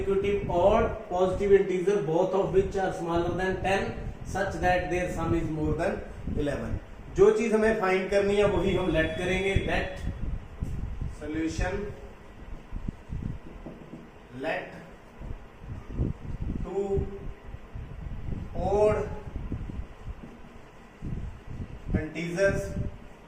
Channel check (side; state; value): both; identical; correlation 1.00